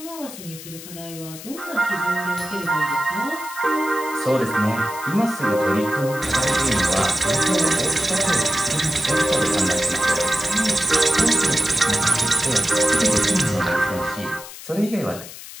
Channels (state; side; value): noise; left; hiss, 14 dB below the sound